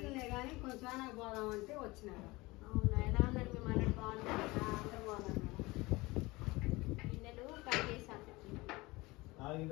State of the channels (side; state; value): right; quieter; 22.0 dB